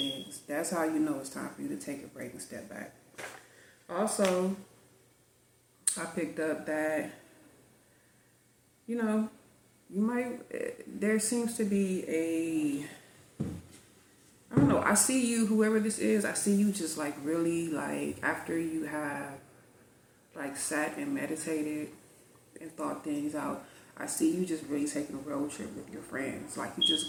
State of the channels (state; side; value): identical; both; correlation 1.00